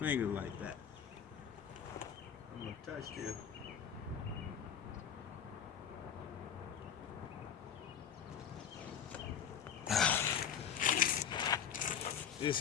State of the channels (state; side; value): quieter; right; 8.2 dB